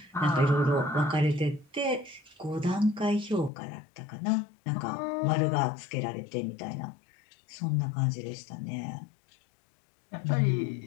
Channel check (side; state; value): right; drops out; at 3.5 s